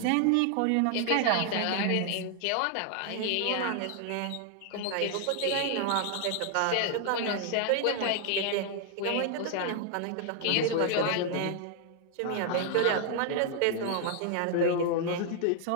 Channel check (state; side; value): different; both; correlation 0.00